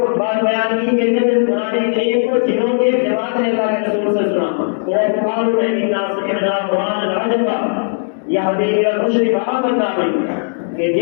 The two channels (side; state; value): right; silent; digital silence